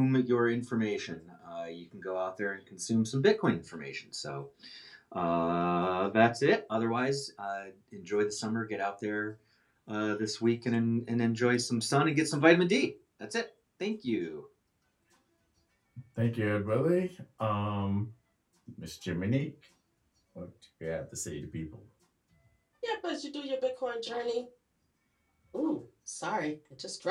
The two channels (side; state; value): both; identical; correlation 1.00